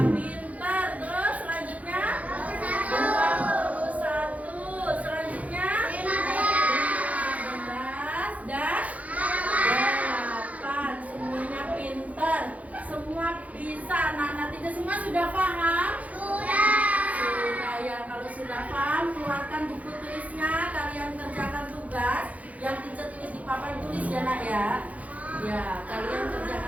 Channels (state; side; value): late; left; 0.070 ms